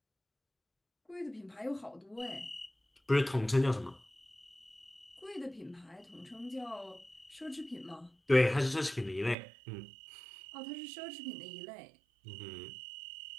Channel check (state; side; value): drops out; left; at 9.3 s